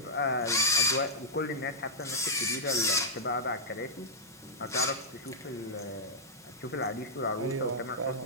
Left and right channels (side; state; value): both; normal; correlation -0.09